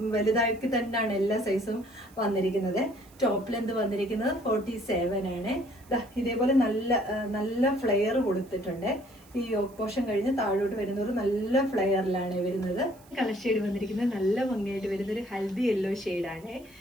വലുതാക്കി തന്നെയാണ് എല്ലാ സൈസും വന്നിരിക്കുന്നത്. ടോപ്പ് ലെന്ത് വന്നിരിക്കുന്നത് 47 ആണ്. ഇതേപോലെ നല്ല ഫ്ലെയർ കൊടുത്തിട്ടുണ്ട്. ഈ യോക്ക് പോർഷൻ കഴിഞ്ഞ് താഴോട്ട് വരുന്നവർ നല്ല ഫ്ലെയറിലാണ് വരുന്നത്. കളർ ഷെയ്ഡ് വന്നിരിക്കുന്നത് നല്ല ഭംഗിയായിട്ട് വരുന്ന ഒരു ഹൽദി യെല്ലോ ഷെയ്ഡാണ്.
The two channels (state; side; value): noise; right; hiss, 27 dB below the sound